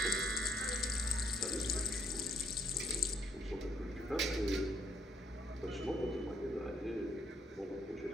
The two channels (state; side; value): normal; both; correlation 0.66